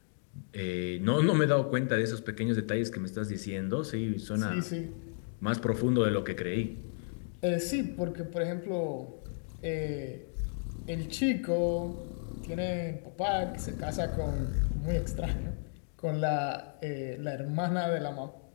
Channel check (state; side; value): silent; right; digital silence